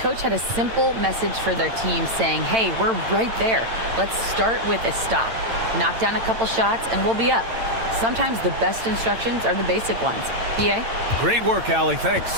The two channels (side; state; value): left; late; 8.9 ms